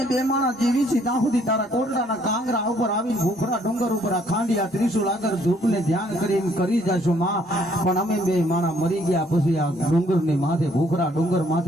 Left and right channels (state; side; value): normal; both; correlation 0.65